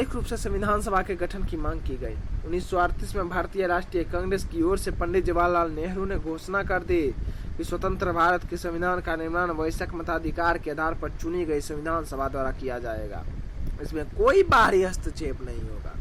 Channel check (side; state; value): both; identical; correlation 1.00